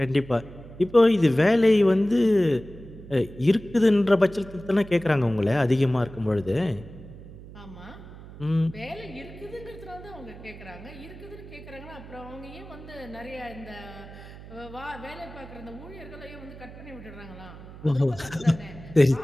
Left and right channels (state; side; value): noise; right; hum, 16 dB below the sound